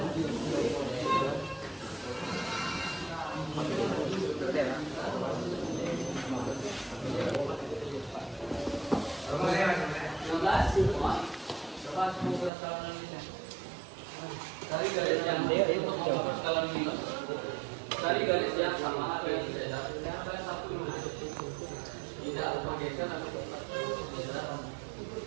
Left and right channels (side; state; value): left; drops out; at 12.5 s